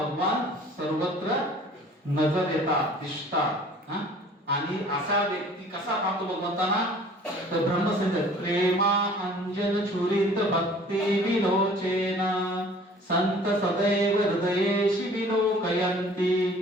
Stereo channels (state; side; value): normal; both; correlation 0.50